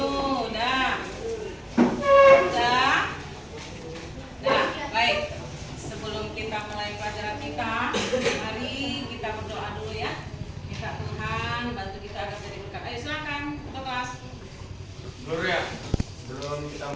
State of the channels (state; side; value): identical; both; correlation 1.00